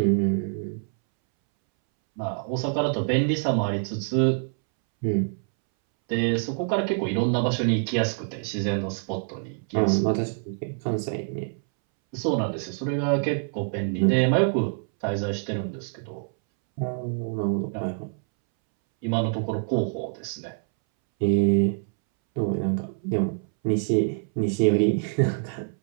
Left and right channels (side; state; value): left; silent; 61 dB below the other